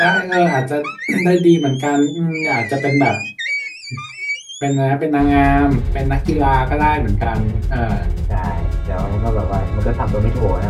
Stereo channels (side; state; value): both; identical; correlation 1.00